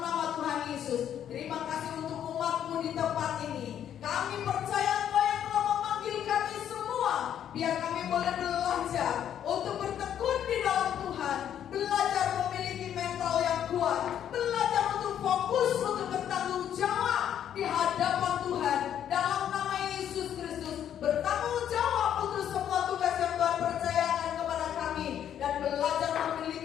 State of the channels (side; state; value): right; quieter; 9.9 dB